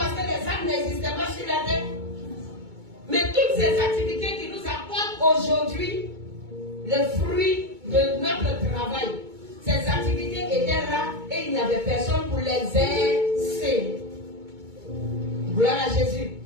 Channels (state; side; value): late; left; 2.2 ms